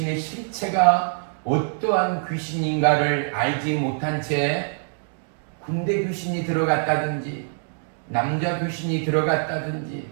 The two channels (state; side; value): silent; left; digital silence